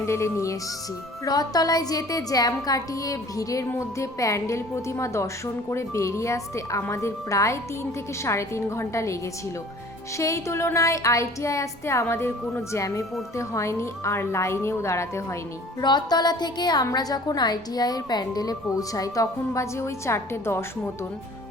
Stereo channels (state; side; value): noise; right; rumble, 27 dB below the sound